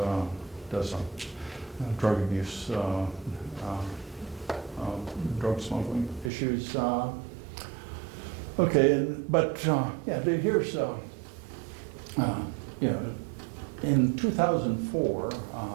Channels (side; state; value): left; drops out; at 6.3 s